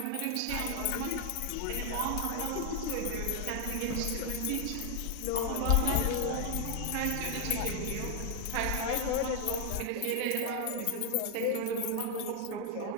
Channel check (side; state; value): both; different; correlation 0.00